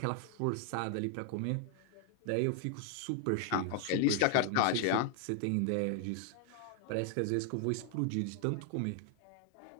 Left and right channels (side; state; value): both; different; correlation 0.00